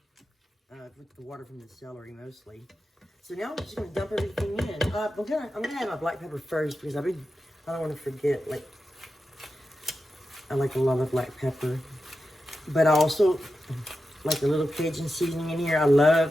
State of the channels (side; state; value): both; normal; correlation 0.90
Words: with the water from the celery mostly. So now I'm just gonna dump everything in. I'm gonna have my black pepper first because I don't want to forget. Like, I like a lot of black pepper, but I also like a little Cajun seasoning in here. I